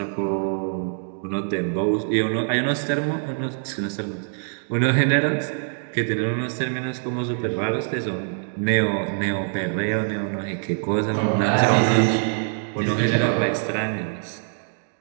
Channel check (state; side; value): silent; left; 63 dB below the other